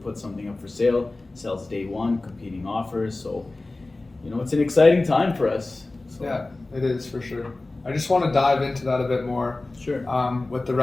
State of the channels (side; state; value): right; quieter; 3.1 dB